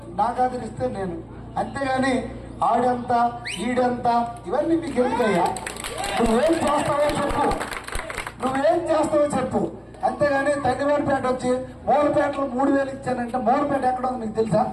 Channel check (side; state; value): both; identical; correlation 1.00